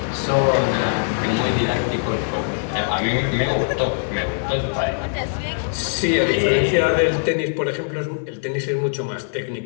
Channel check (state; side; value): silent; right; digital silence